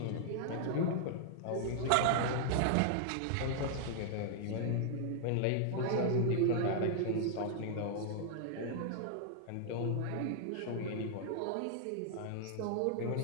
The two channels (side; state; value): both; different; correlation -0.01